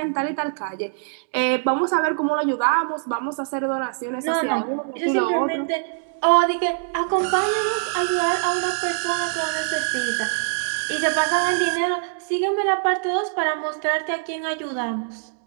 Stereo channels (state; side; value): silent; left; digital silence